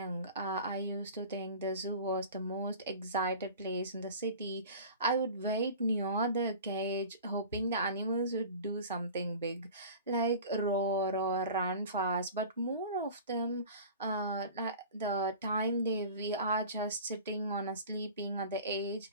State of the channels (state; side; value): inverted; both; correlation -0.39